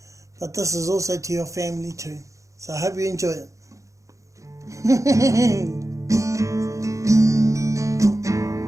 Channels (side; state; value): left; late; 0.15 ms